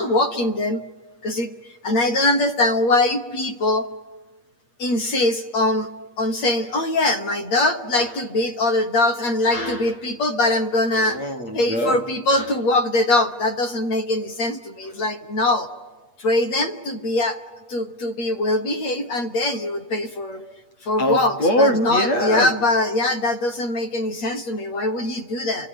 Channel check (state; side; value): late; right; 8.4 ms